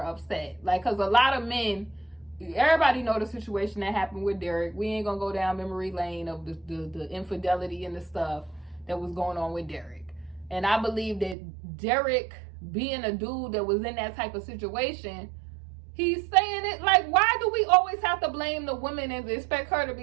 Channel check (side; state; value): left; drops out; at 11.4 s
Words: upset. Like, because a lot of men, everybody know the situation that happened with Derek. We ain't gonna go down memory lane of the infidelity and the stuff that was going on with Derek. And I believe that Derek, being a dude that was in that type of situation, he's saying it like, why do we always have to blame the woman and expect her to